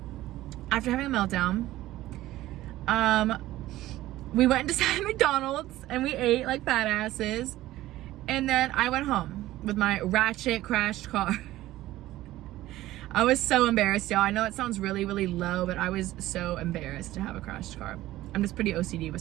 after having a meltdown, we went inside McDonald's, and we ate like fat asses. And then I went home with my ratchet crashed car. I was so embarrassed, y'all. I know it sounds really, really low, but I was so embarrassed to have a crashed car. I'm just pretty OCD with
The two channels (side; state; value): left; quieter; 15.7 dB